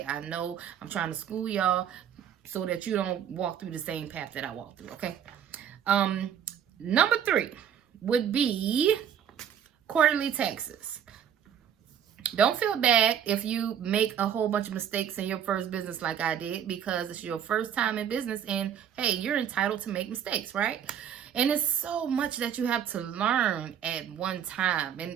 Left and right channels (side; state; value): left; quieter; 8.9 dB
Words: I know I'm trying to school y'all so that you don't walk through the same path that I walked through, okay? Number 3 would be quarterly taxes. Don't feel bad if you make a whole bunch of mistakes in your first business like I did, because it's your first time in business, and hey, you're entitled to make mistakes, right? And it's so much that you have to learn at one time,